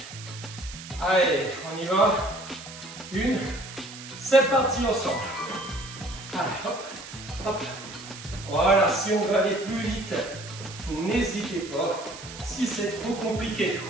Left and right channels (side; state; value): right; noise; hiss, 14 dB below the sound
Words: Allez, on y va. 1. C'est parti ensemble. Allez, hop. Hop. Voilà, si on veut aller plus vite, n'hésitez pas. Si c'est trop compliqué,